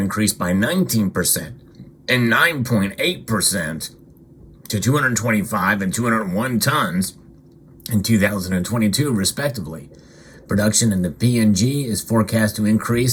by 19% and 9.8% to 225 and 201 tons in 2022, respectively. Production in the PNG is forecast to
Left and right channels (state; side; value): identical; both; correlation 1.00